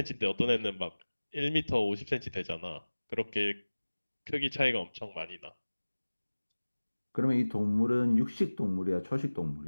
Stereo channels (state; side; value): inverted; both; correlation -1.00